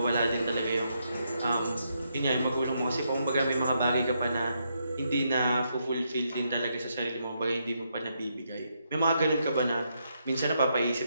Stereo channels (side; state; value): both; inverted; correlation -0.79